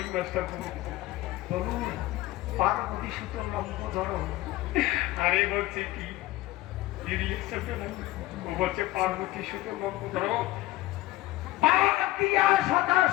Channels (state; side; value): quieter; right; 17.3 dB